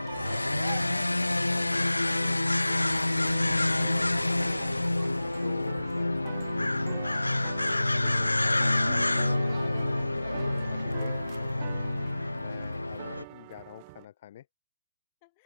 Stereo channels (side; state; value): both; inverted; correlation -0.97